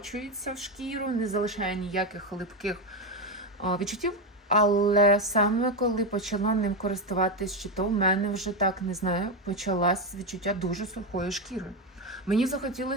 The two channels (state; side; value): normal; both; correlation 0.10